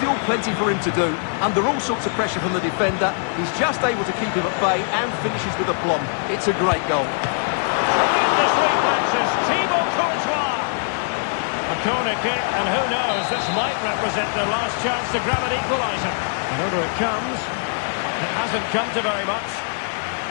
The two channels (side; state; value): right; silent; digital silence